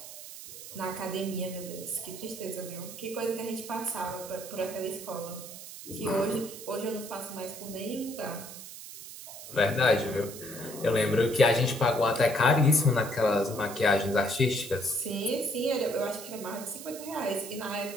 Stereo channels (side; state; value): right; noise; hiss, 13 dB below the sound